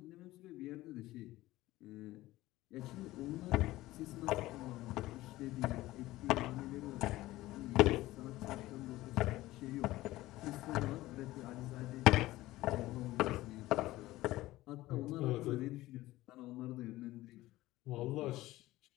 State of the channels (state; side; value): quieter; right; 17.2 dB